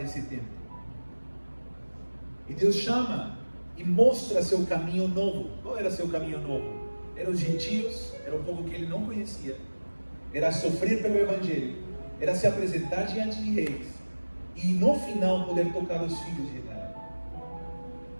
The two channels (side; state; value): both; inverted; correlation -1.00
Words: esse tempo. E Deus chama e mostra seu caminho novo. Qual era seu caminho novo? Eram os gentios, era o povo que ele não conhecia, era sofrer pelo Evangelho, era se apresentar diante de reis, e no final poder tocar os filhos de Israel.